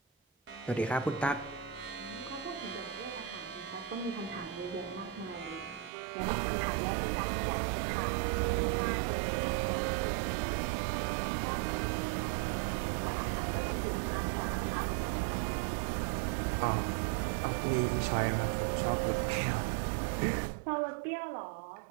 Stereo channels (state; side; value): drops out; left; at 5.9 s